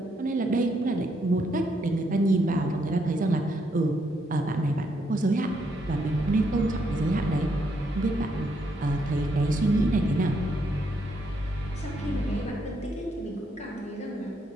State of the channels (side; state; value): both; normal; correlation 0.76